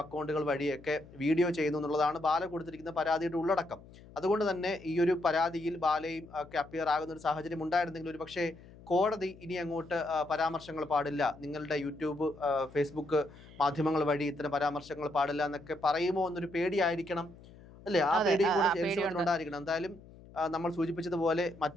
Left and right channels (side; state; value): left; noise; hum, 21 dB below the sound